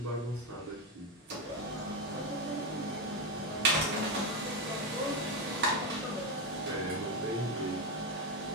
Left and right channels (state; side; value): normal; both; correlation 0.09